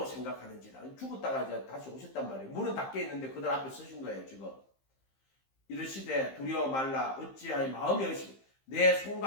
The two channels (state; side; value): late; right; 15 ms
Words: 생각하는지라. 죽었다가 이제 다시 오셨단 말이에요. 문은 닫혀 있는데 그들 앞에 서신 거예요. 지금 이르시되 두려워 말라. 어찌하여 마음이 의심 내